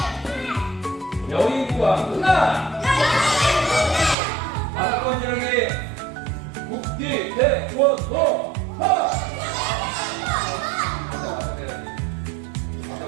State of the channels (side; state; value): left; drops out; at 4.2 s